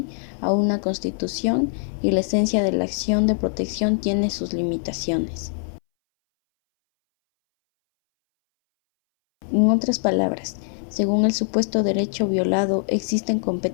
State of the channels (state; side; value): silent; right; 62 dB below the other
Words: a una constitución, y la esencia de la acción de protección tiene sus limitaciones. En otras palabras, según el supuesto derecho violado, existen